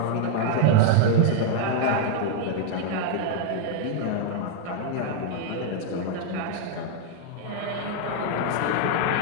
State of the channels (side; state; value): both; different; correlation 0.00